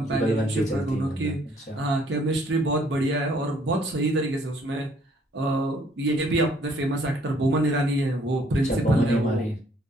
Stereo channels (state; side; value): normal; both; correlation 0.63